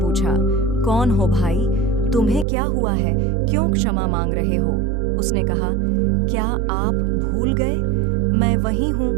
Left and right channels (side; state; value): left; drops out; at 2.5 s